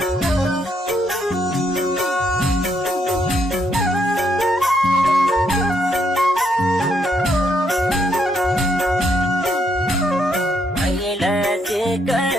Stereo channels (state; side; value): normal; both; correlation 0.75